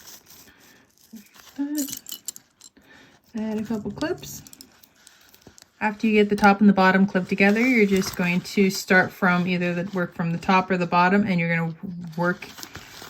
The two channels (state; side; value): identical; both; correlation 1.00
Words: Add a couple clips. After you get the top and the bottom clipped together, you're just going to start from either the work from the top or the bottom, and you're going to work